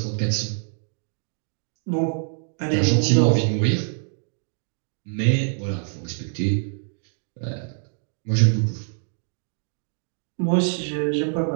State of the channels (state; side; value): silent; left; digital silence